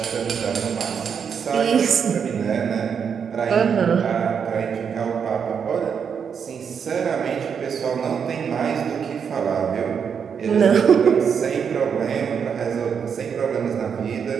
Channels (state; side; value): quieter; left; 7.0 dB